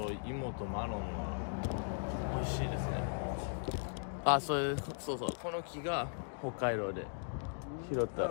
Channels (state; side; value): silent; right; digital silence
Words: 芋とマロンは美味しいですね。あ、そうそう。この木が北海道で拾った。